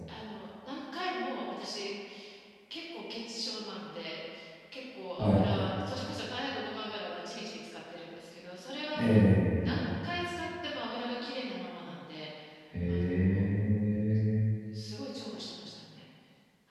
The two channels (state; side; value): identical; both; correlation 1.00